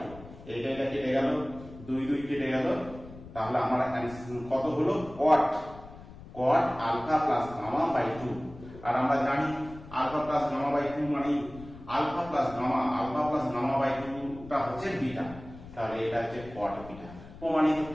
2। এটা কেটে গেল, 2 2 কেটে গেল, তাহলে আমার কত হলো cot alpha plus gamma by 2। আর আমরা জানি আলফা প্লাস গামা বাই 2 মানে আলফা প্লাস গামা বাই 2 টা হচ্ছে বিটা, তাহলে এটা হচ্ছে cot বিটা, প্রমাণিত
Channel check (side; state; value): left; noise; rumble, 17 dB below the sound